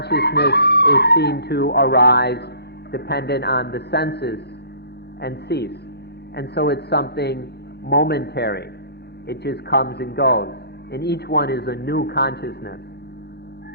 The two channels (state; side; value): late; right; 0.48 ms